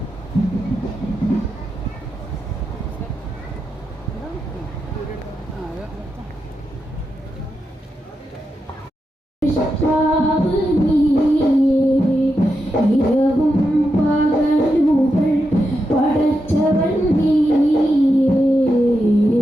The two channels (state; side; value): normal; both; correlation 0.86